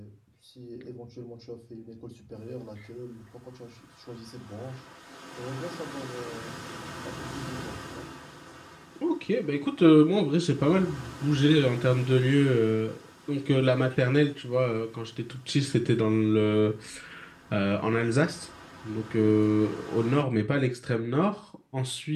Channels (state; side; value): identical; both; correlation 1.00